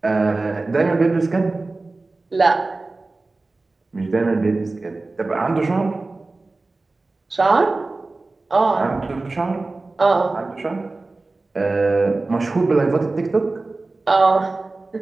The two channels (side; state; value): left; quieter; 3.4 dB